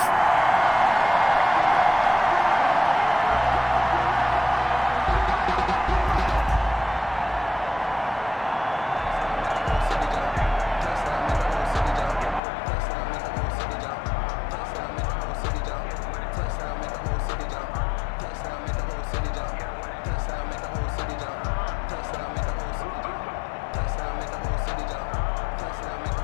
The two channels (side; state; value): right; drops out; at 12.4 s